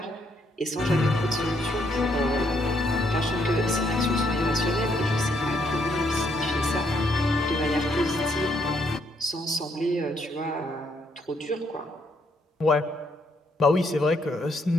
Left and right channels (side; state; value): both; normal; correlation 0.72